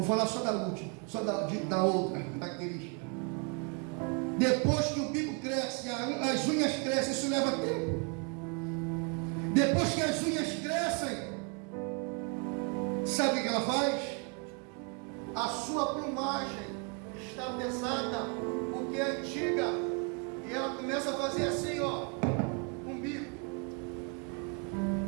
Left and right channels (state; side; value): quieter; left; 35.1 dB